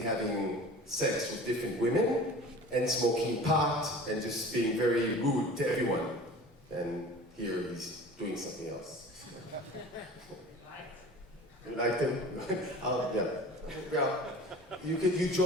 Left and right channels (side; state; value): both; normal; correlation 0.40